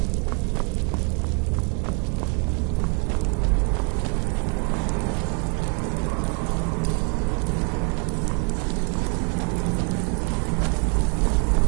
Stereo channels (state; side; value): quieter; left; 38.2 dB